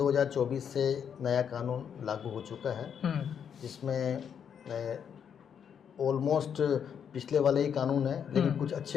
से नया कानून लागू हो चुका है, जिसमें ऑलमोस्ट पिछले वाले ही कानून है, लेकिन कुछ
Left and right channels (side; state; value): right; quieter; 7.9 dB